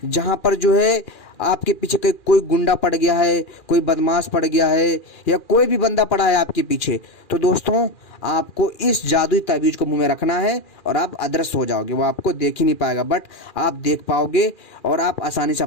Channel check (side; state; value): right; late; 2.4 ms